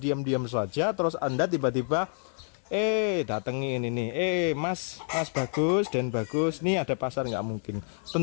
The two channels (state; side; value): silent; right; 59 dB below the other